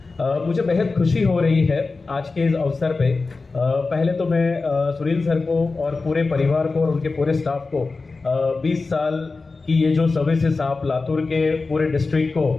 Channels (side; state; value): right; quieter; 3.9 dB